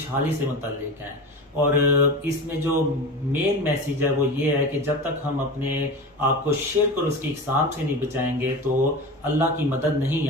سے متعلق ہیں، اور اس میں جو مین میسیج ہے وہ یہ ہے کہ جب تک ہم اپنے آپ کو شرک اور اس کی اقسام سے نہیں بچائیں گے تو اللہ کی مدد نہیں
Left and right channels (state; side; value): normal; both; correlation 0.29